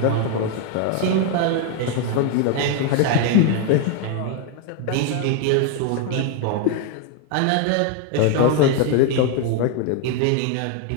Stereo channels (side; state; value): both; different; correlation 0.01